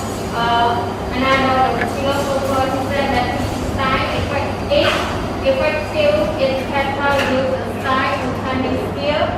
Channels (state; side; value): identical; both; correlation 1.00